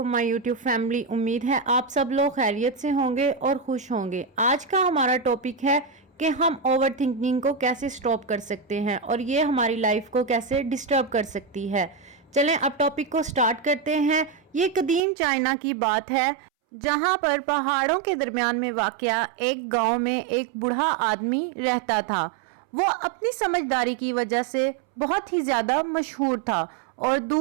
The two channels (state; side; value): drops out; left; at 15.0 s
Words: my YouTube family. उम्मीद है आप सब लोग खैरियत से होंगे और खुश होंगे। आज का हमारा टॉपिक है कि हम ओवर थिंकिंग को कैसे स्टॉप कर सकते हैं और ये हमारी लाइफ को कैसे डिस्टर्ब कर सकती है। चलें अब टॉपिक को स्टार्ट करते हैं। ये कदीम चाइना की बात है जहां पर पहाड़ों के दरमियान में वाक़या एक गांव में एक बूढ़ा आदमी रहता था। वो अपनी समझदारी की वजह से बहुत ही ज़्यादा मशहूर था और